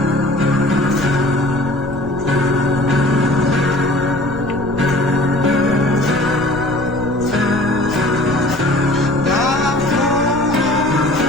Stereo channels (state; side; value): noise; left; rumble, 13 dB below the sound